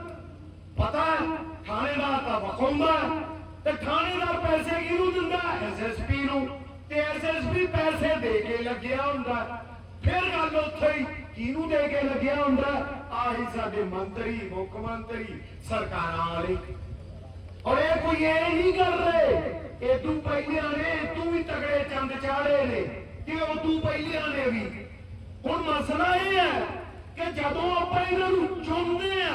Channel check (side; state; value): both; identical; correlation 1.00